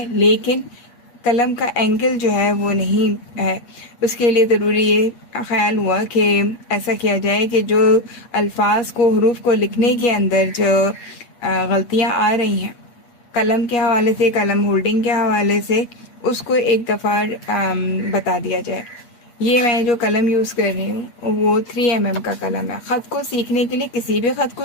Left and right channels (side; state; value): right; late; 8.4 ms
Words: لیکن قلم کا اینگل جو ہے وہ نہیں ہے۔ اس کے لیے ضروری یہ خیال ہوا کہ ایسا کیا جائے کہ جو الفاظ کو، حروف کو لکھنے کے اندر جو غلطیاں آ رہی ہیں قلم کے حوالے سے، قلم ہولڈنگ کے حوالے سے، اس کو ایک دفعہ بتا دیا جائے۔ یہ میں جو قلم یوز کر رہی ہوں وہ 3mm کا قلم ہے۔ خط کو سیکھنے کے لیے، کسی بھی خط کو